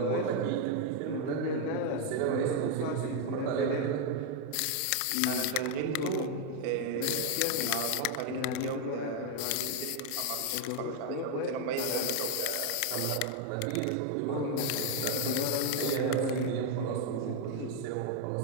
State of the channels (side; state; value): both; different; correlation 0.01